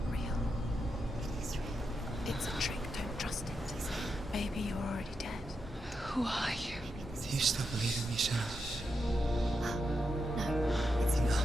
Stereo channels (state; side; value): normal; both; correlation 0.85